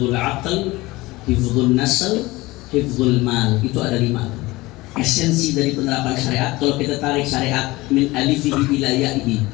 aql, hifdzun nasl, hifdzul mal. Itu ada 5. Esensi dari penerapan syariat, kalau kita tarik syariat min alifihi ila ya'ihi,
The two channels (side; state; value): right; quieter; 20.5 dB